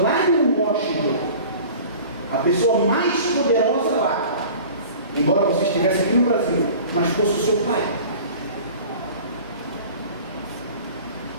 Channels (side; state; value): both; inverted; correlation -0.42